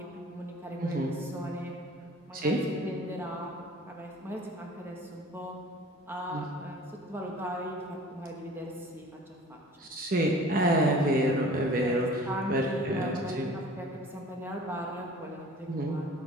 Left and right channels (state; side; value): normal; both; correlation 0.46